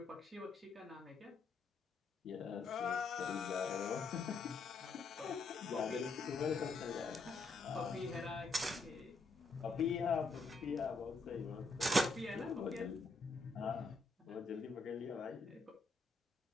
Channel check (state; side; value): quieter; right; 3.5 dB